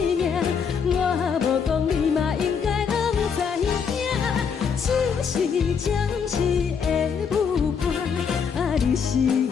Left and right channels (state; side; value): quieter; right; 6.5 dB